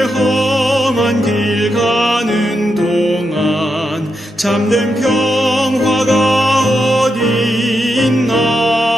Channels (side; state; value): both; normal; correlation 0.84